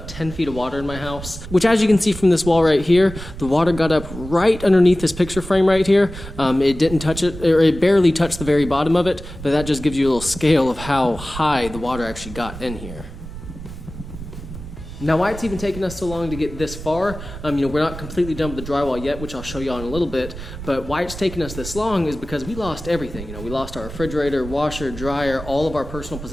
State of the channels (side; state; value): right; noise; rumble, 12 dB below the sound